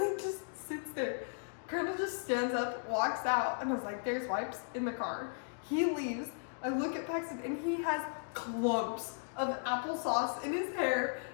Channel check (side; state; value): right; silent; digital silence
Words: just sits there. Crandall just stands up, walks out, and I was like, there's wipes in the car. He leaves. I look at Paxton, and he has clumps of applesauce in his hair.